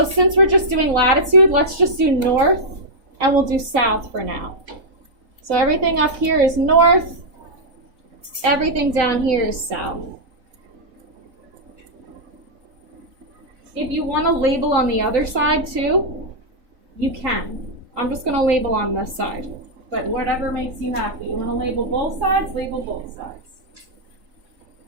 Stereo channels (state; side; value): late; left; 3.7 ms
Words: since we're just doing latitude, let's just do north and we'll do south for now. So everything up here is north. Everything down here is south. If you want to label on the other side too, you can. I'm just going to label on this side, but whatever makes you happy. You want to label both sides, label both sides.